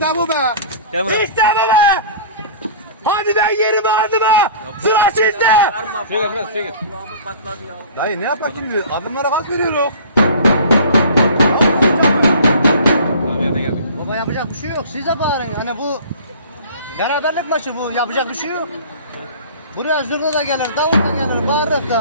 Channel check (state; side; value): inverted; both; correlation -0.42